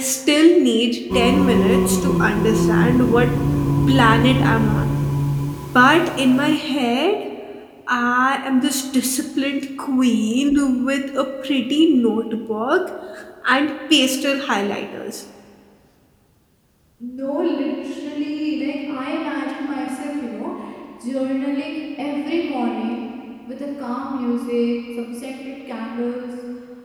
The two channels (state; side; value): identical; both; correlation 1.00